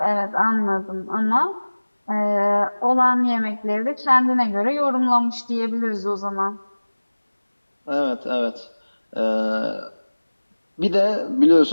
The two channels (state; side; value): inverted; both; correlation -1.00